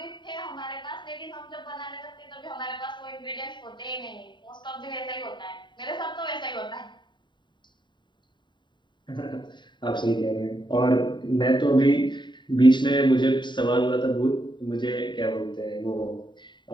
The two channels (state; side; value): late; right; 0.22 ms